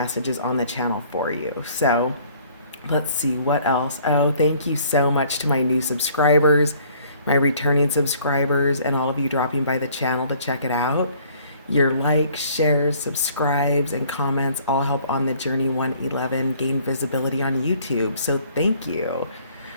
on the channel for you. So let's see what else. Oh, thank you so much to my new subscribers, my returning subscribers, and all of you dropping by the channel to check it out. Your likes, shares, subscribes, and comments all help On the Journey 111 gain visibility on YouTube. So thank you.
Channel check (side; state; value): both; inverted; correlation -0.58